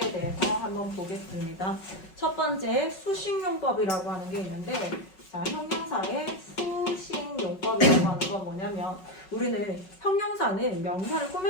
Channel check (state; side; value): late; right; 5.4 ms